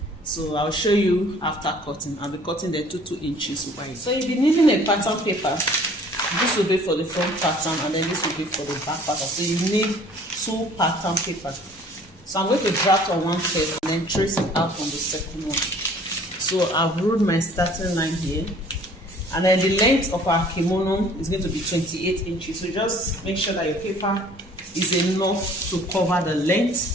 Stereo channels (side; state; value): both; normal; correlation 0.53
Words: so I'll show you after cutting. I'll be cutting the 2 inches wide. So you'll be needing a pattern paper. This will be for the front pattern, and then this will be for the back pattern. So you need 2 pattern papers. So I'm going to draft on one first and then trace it out on the second one. So I've ruled my starting line here, and then the length of our kimono is going to be 28 inches. So just make sure that your paper is enough to cover the